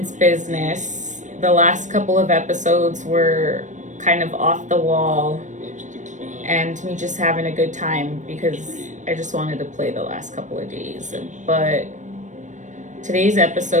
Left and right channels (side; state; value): left; late; 0.35 ms